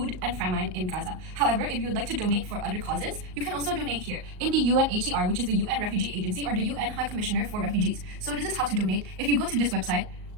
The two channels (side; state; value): left; late; 38 ms